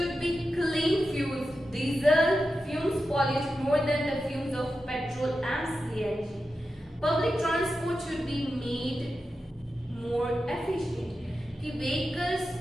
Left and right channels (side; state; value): both; normal; correlation 0.90